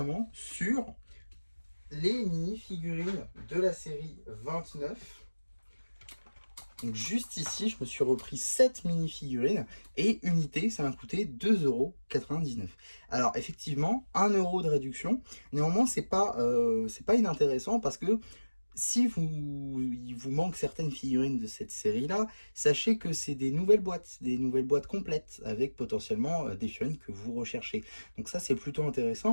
sur les mini-figurines de la série 29. Donc juste ici, je me suis repris 7 mini-figurines et unité, ça m'a coûté 2,99 €. Alors effectivement, 1 € de réduction. Néanmoins, c'est pas inintéressant parce que si il vous manque certaines figurines de cette série-là, sachez que c'est des nouvelles boîtes complètes avec potentiellement des figurines que vous recherchez. Donc ça, c'est plutôt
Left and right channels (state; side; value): inverted; both; correlation -1.00